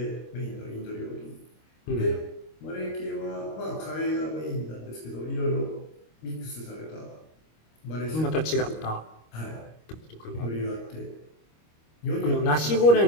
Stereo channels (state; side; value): late; right; 25 ms